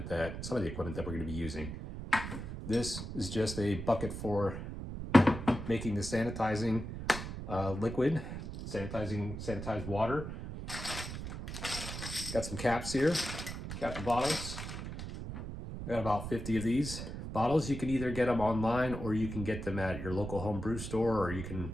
some of the equipment that we're gonna be using. This is just a bucket for making the sanitizing liquid, sanitized water. Got some caps here, cap the bottles. I got about 50 of these bottles. You can either get them online or you can get them at your local home brew store, or you can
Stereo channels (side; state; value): right; noise; rumble, 7 dB below the sound